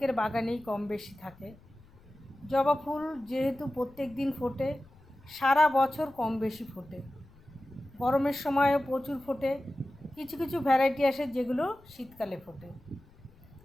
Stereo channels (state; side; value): noise; left; rumble, 26 dB below the sound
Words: বাগানেই কম বেশি থাকে। জবা ফুল যেহেতু প্রত্যেক দিন ফোটে, সারা বছর কম বেশি ফোটে। গরমের সময়ও প্রচুর ফোটে, কিছু কিছু ভ্যারাইটি আসে যেগুলো শীতকালে ফোটে।